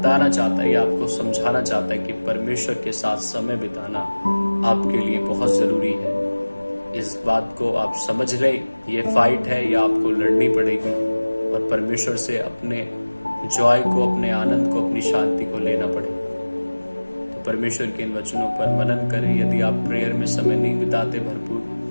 चाहता है, आपको समझाना चाहता है कि परमेश्वर के साथ समय बिताना आपके लिए बहुत जरूरी है। इस बात को आप समझ लें, ये फाइट है, ये आपको लड़नी पड़ेगी और परमेश्वर से अपने जॉय को, अपने आनंद को, अपनी शांति को लेना पड़ेगा। तो परमेश्वर के इन वचनों पर मनन करें। यदि आप प्रेयर में समय नहीं बिताते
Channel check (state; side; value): inverted; both; correlation -1.00